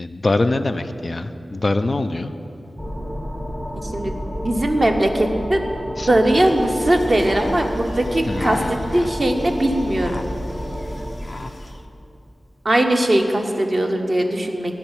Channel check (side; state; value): both; normal; correlation 0.96